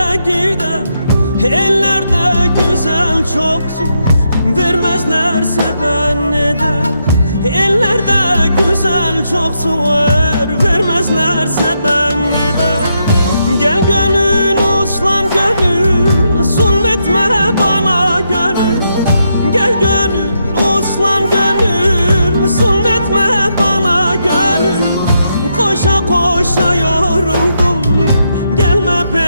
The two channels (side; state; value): both; inverted; correlation -0.81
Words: gider. Ellerde güzel çok zor, vermezlerse ben neden? Ellerde güzel çok zor, vermezlerse ben neden? Gel gönül uslan gönül, zulmetme bana gönül. Gel gönül uslan gönül, zulmetme bana gönül. Koşa koşa yoruldum, gelme